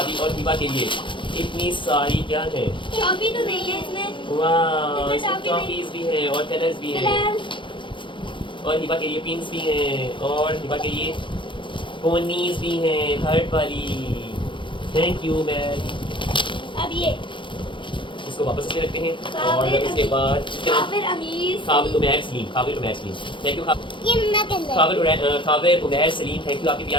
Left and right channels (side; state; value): right; late; 0.24 ms